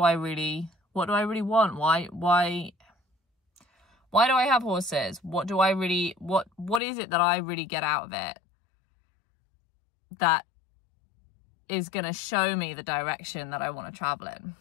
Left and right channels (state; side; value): drops out; right; at 6.8 s